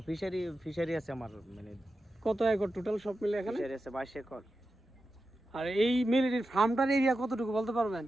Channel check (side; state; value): both; normal; correlation 0.91